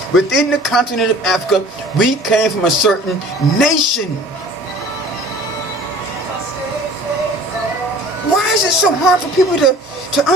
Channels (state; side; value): normal; both; correlation 0.47